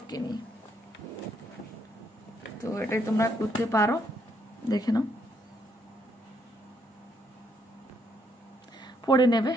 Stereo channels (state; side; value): normal; both; correlation 0.73